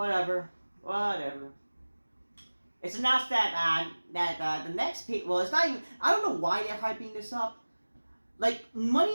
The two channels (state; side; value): inverted; both; correlation -1.00